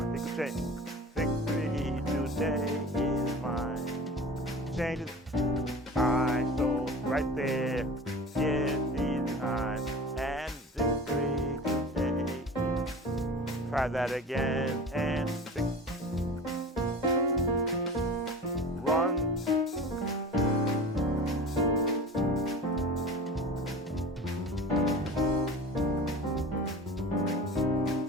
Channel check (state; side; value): normal; both; correlation 0.36